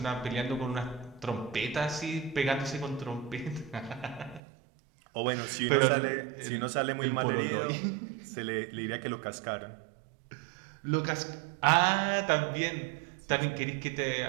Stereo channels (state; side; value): drops out; left; at 4.4 s